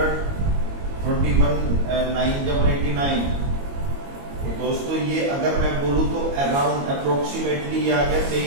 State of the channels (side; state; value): left; late; 22 ms